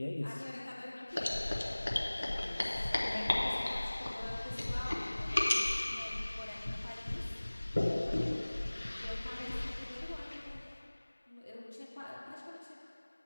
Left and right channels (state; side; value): inverted; both; correlation -1.00